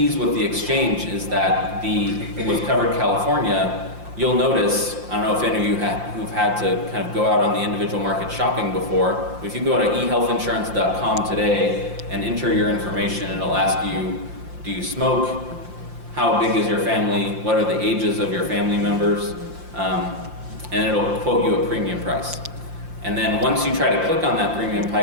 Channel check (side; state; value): left; late; 5.7 ms